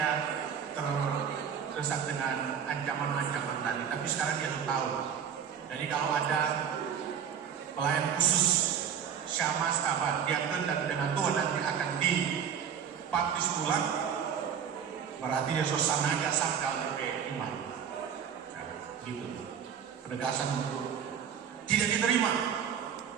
terdesak dengan ancaman-ancaman tadi, tapi sekarang dia tahu. Jadi kalau ada pelayan khusus syamas diakon dan penatua nanti akan dibaptis ulang, berarti dia suasananya sangkal di iman. Nah, gitu. Penegasan untuk tidak diterima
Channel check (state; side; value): quieter; left; 7.9 dB